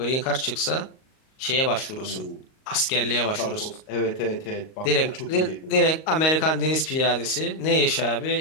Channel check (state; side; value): late; right; 38 ms